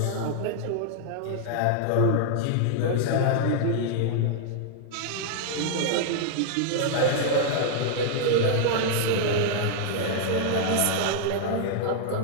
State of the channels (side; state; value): both; different; correlation -0.01